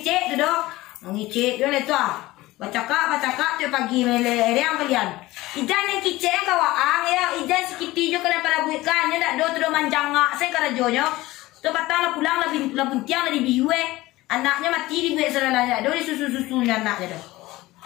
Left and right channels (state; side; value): quieter; right; 18.5 dB